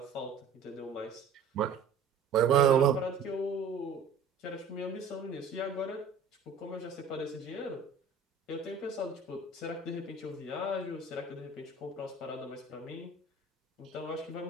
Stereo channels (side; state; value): left; quieter; 4.9 dB